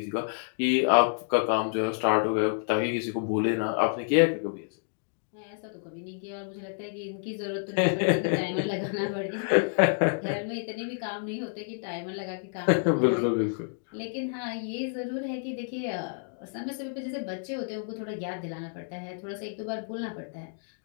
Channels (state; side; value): silent; right; digital silence